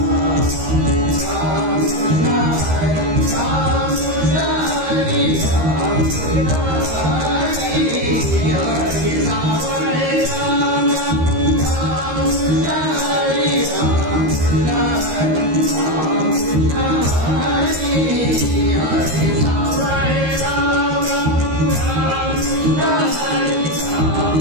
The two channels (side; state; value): left; late; 13 ms